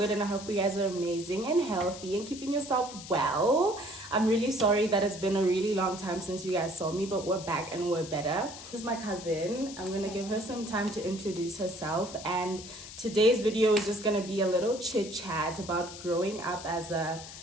and I hope you guys are amazing and healthy and keeping yourself well. I'm really sorry that it's been a really long time since you guys saw me, but we're back and we're better. This is my cousin. I'm gonna give her some time to introduce herself, and today's video is just gonna be a little chit chat about growing up as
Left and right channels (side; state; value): left; noise; hiss, 13 dB below the sound